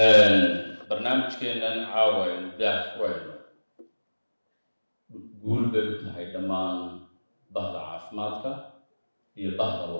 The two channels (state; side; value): inverted; both; correlation -1.00